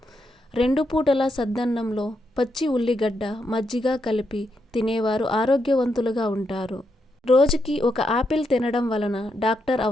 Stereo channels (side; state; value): both; normal; correlation 0.81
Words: 2 పూటల సద్దన్నంలో పచ్చి ఉల్లిగడ్డ, మజ్జిగ కలిపి తినేవారు ఆరోగ్యవంతులుగా ఉంటారు. రోజుకి ఒక ఆపిల్ తినడం వలన డాక్టర్